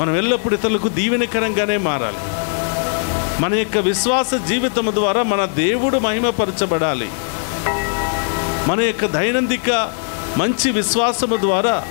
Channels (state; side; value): silent; right; digital silence